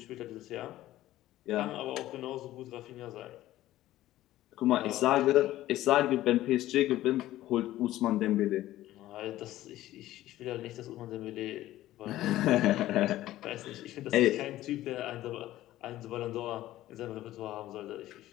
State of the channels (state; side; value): quieter; right; 14.9 dB